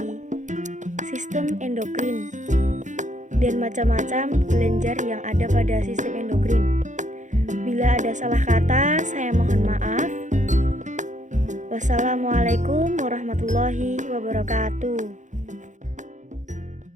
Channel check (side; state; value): left; late; 0.36 ms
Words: sistem endokrin dan macam-macam kelenjar yang ada pada sistem endokrin. Bila ada salah kata, saya mohon maaf. Wassalamualaikum warahmatullahi wabarakatuh.